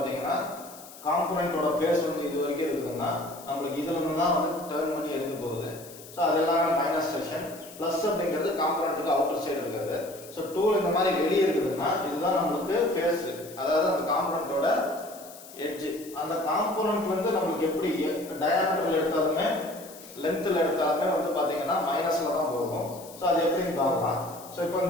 காம்பனண்டோட ஃபேஸ் வந்து இது வரைக்கும் இருக்குதுன்னா நம்மளுக்கு இதுல இருந்து தான் வந்து டர்ன் பண்ணி எடுக்க போகுது. ஸோ அதெல்லாம் மைனஸ் செக்ஷன். ப்ளஸ் அப்படிங்கிறது காம்பனண்ட்டுக்கு அவுட்டர் சைடு இருக்கிறது. ஸோ டூல் இந்த மாதிரி வெளியே இருக்குதுன்னா இதுதான் நம்மளுக்கு ஃபேஸ், அதாவது அந்த காம்பனண்டோட எட்ஜ். அந்த காம்பனண்ட் வந்து நம்மளுக்கு எப்படி டயாமீட்டர்ல எடுத்தாலுமே லென்த்தில் எடுத்தாலுமே வந்து பார்த்தீங்கன்னா மைனஸ்ல தான் போகும். ஸோ அது எப்படின்னு பார்க்கலாம். ஸோ இப்போ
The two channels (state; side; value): noise; left; hiss, 18 dB below the sound